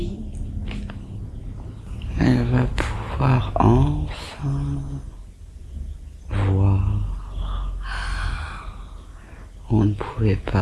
Elle va pouvoir enfin voir. On ne pouvait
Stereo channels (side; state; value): both; identical; correlation 1.00